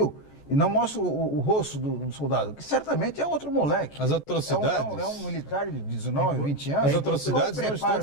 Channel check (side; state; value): right; late; 14 ms